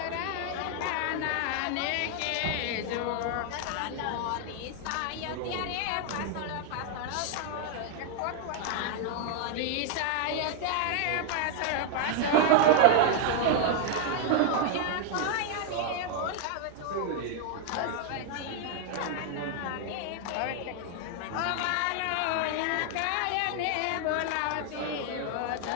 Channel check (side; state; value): both; different; correlation 0.00